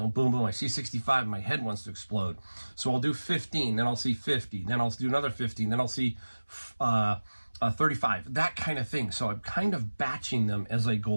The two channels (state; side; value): inverted; both; correlation -1.00